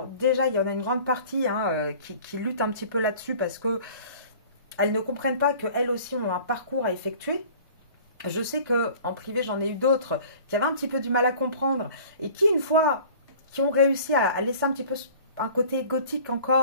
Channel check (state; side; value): inverted; both; correlation -0.46